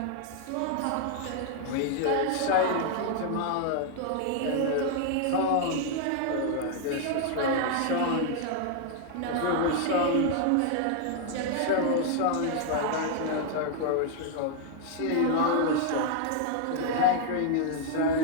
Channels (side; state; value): both; different; correlation 0.00